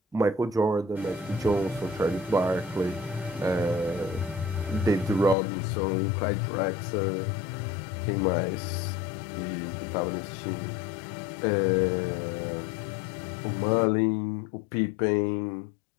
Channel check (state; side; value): drops out; right; at 5.4 s